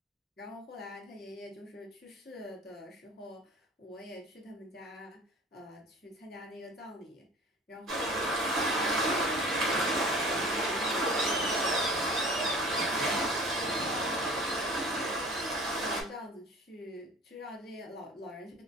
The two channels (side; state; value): both; normal; correlation 0.44